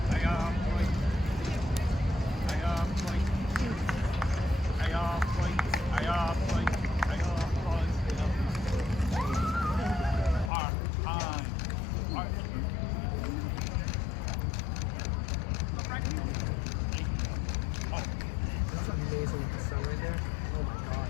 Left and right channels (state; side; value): drops out; right; at 10.5 s